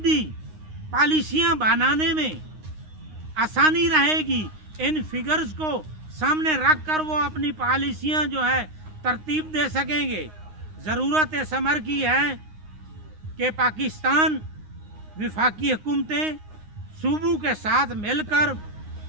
पॉलिसियाँ बनाने में आसानी रहेगी। इन फिगर्स को सामने रख कर वो अपनी पॉलिसियाँ जो है तरतीब दे सकेंगे। ज़रूरत इस अमर की है कि पाकिस्तान वफाकी हुकूमतें सूबों के साथ मिलकर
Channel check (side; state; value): left; late; 9.6 ms